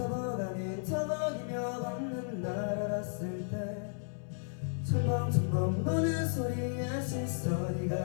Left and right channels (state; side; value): silent; right; 55 dB below the other